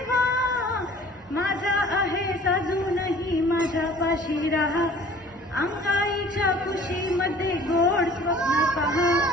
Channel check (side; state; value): both; normal; correlation 0.50